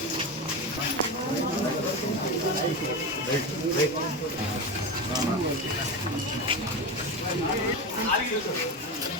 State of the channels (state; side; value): normal; both; correlation 0.20